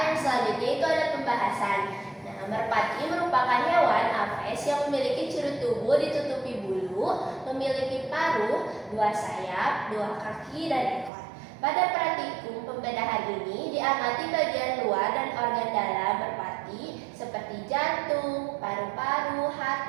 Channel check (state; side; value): drops out; left; at 11.1 s